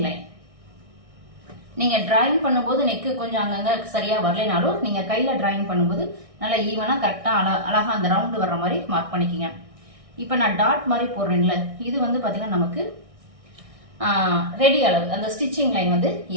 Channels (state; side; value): late; left; 1.6 ms